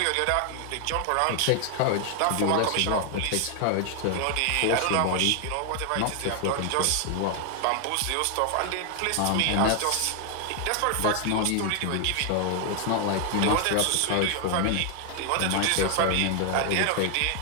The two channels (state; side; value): different; both; correlation 0.00